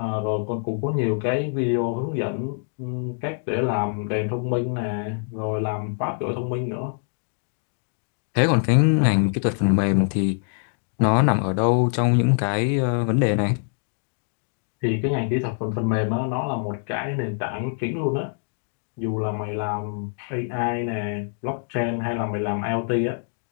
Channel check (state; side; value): silent; right; 62 dB below the other